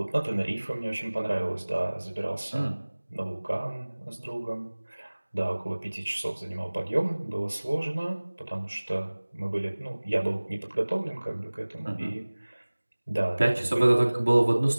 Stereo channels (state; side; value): inverted; both; correlation -1.00